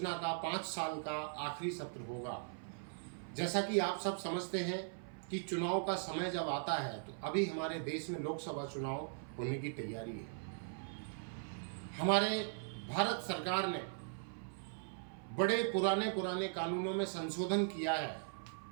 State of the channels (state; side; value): silent; left; 51 dB below the other